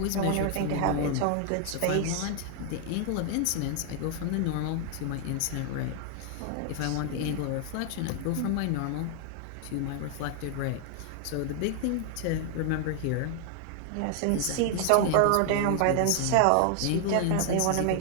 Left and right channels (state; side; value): different; both; correlation 0.00